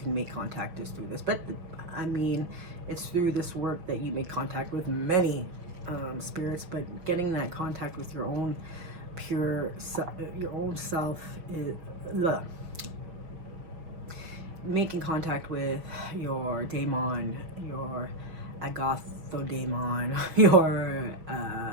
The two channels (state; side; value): late; left; 5.6 ms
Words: make contact is through this, but I mean, it's through this work that you make contact with many spirits. But getting that contact with your own pure your own self is making contact with your daemon, your agathodemon, your